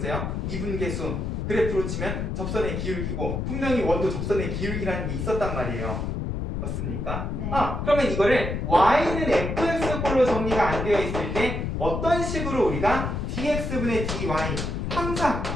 미분계수, 그래프로 치면 접선의 기울기고 분명히 원도 접선의 기울기라는 게 있었단 말이에요. 맞습니까? 네. 그러면 이거를 y는 fx꼴로 정리가 안 되어 있을 때 어떤 식으로 우리가 dx분의 dy 항상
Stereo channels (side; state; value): left; noise; rumble, 3 dB below the sound